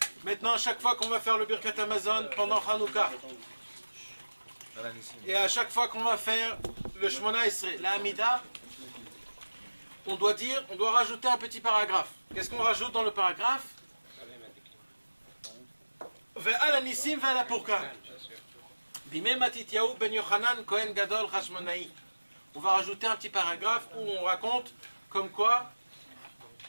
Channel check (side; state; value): both; inverted; correlation -1.00